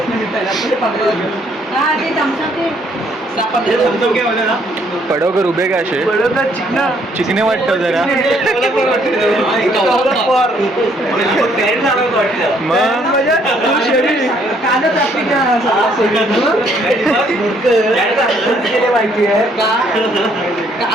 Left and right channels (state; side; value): normal; both; correlation 0.67